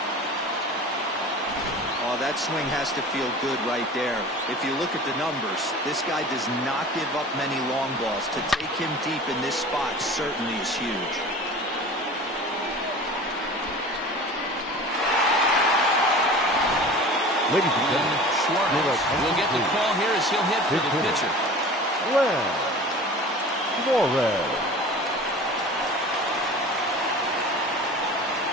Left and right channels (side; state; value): both; normal; correlation 0.39